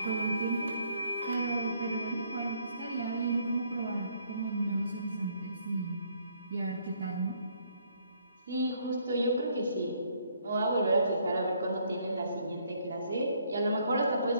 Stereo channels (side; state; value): both; inverted; correlation -0.67